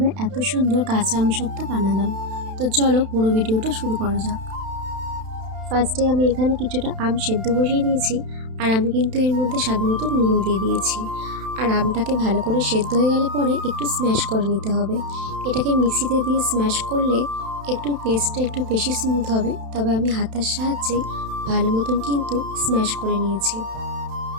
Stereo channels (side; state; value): left; late; 31 ms